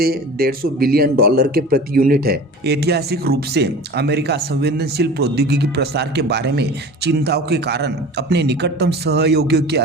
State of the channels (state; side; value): normal; both; correlation 0.38